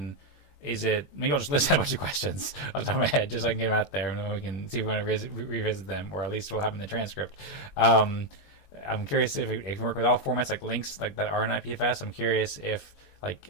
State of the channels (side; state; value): right; late; 21 ms